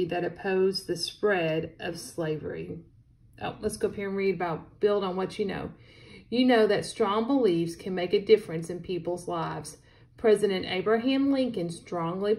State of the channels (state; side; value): identical; both; correlation 1.00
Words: that opposed the spread of slavery. Oh, let's go up here and read about, build on what you know. You know that strong beliefs can make a difference in people's lives. President Abraham Lincoln strongly